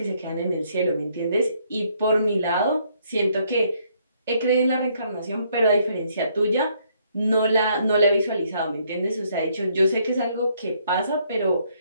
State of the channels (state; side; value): inverted; both; correlation -0.69